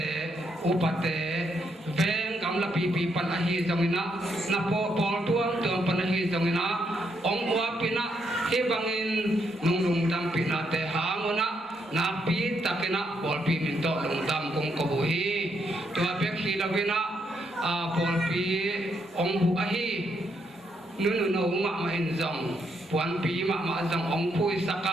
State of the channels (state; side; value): normal; both; correlation 0.77